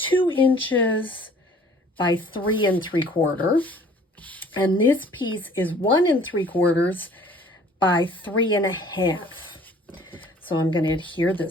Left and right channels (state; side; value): normal; both; correlation 0.53